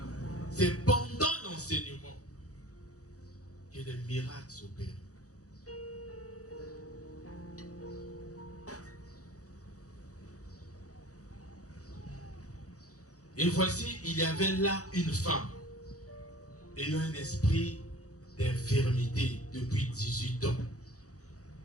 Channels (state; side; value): late; right; 0.66 ms